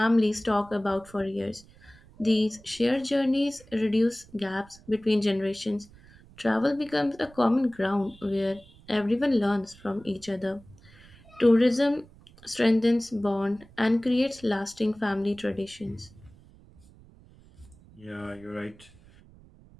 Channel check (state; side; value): noise; right; rumble, 24 dB below the sound